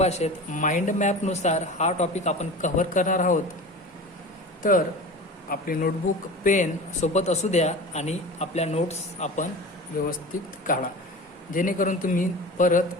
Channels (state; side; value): normal; both; correlation 0.34